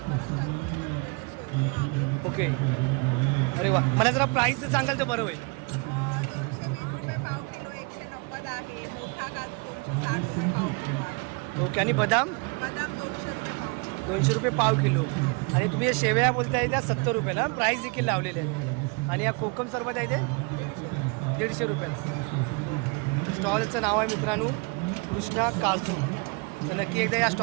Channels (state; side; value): quieter; left; 30.2 dB